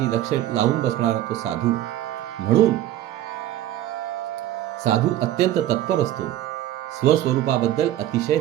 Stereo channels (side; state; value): left; quieter; 13.1 dB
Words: लक्ष लावून बसणारा तो साधू. म्हणून साधू अत्यंत तत्पर असतो. स्वस्वरूपाबद्दल अतिशय